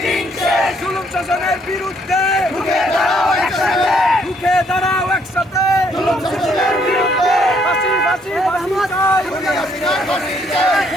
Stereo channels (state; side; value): normal; both; correlation 0.68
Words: শেষ, জুলুম শাসনের বিরুদ্ধে রুখে দাঁড়াও একসাথে, রুখে দাঁড়াও একসাথে। জুলুম শাসনের বিরুদ্ধে, ফাঁসি ফাঁসি ফাঁসি চাই, খুনি হাসিনার ফাঁসি চাই,